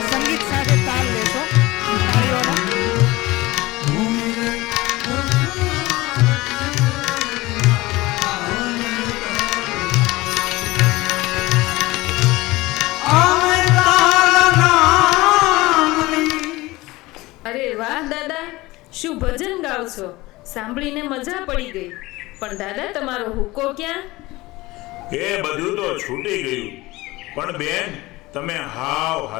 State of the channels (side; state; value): right; quieter; 20.3 dB